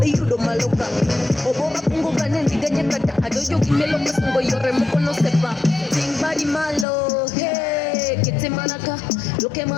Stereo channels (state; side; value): drops out; right; at 6.9 s